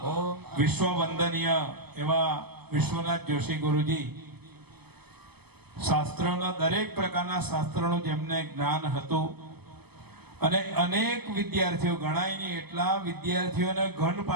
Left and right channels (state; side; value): late; left; 0.98 ms